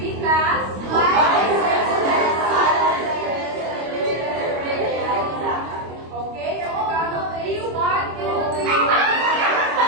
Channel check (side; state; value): left; late; 25 ms